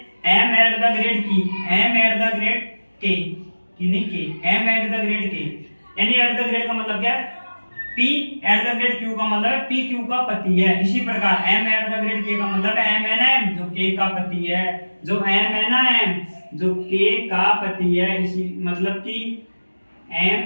M eight the grade K, M eight the grade K, यानी एट द ग्रेड का मतलब क्या है, P eight the grade Q का मतलब है PQ का पति है। इसी प्रकार M eight the grade K का मतलब है M है ना M, जो K का पति है, जो M है ना M, जो K का पति है। इसी मतलब कि M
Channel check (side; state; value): both; inverted; correlation -1.00